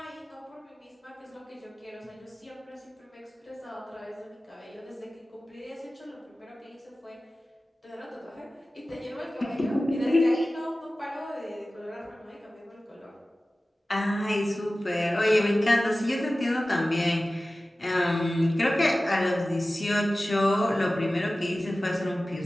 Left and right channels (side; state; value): both; normal; correlation 0.96